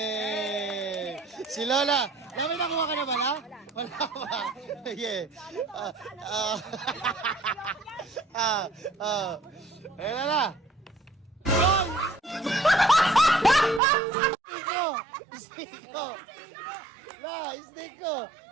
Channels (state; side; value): drops out; left; at 13.8 s